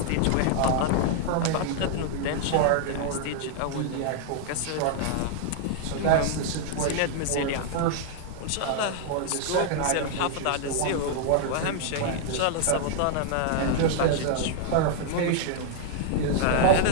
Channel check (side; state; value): both; different; correlation 0.00